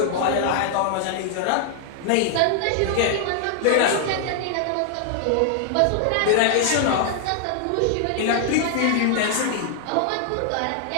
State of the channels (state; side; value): different; both; correlation 0.00